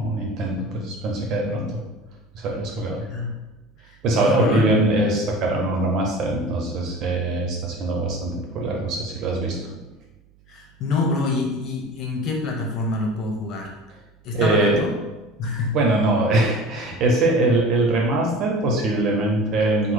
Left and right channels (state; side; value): noise; right; hum, 30 dB below the sound